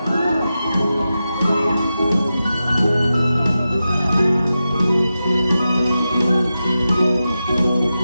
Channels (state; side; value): inverted; both; correlation -0.91